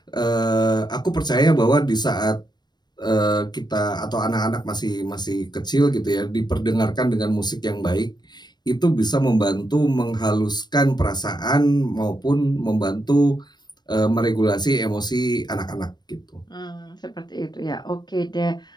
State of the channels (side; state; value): right; late; 0.21 ms